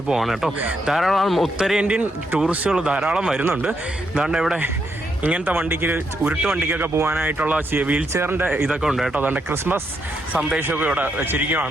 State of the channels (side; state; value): both; normal; correlation 0.79